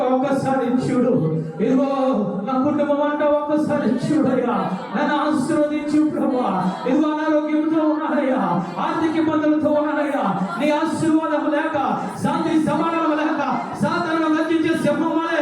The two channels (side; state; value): both; identical; correlation 1.00